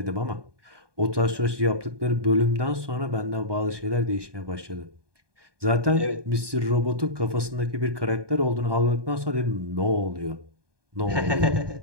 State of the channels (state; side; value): late; left; 1.2 ms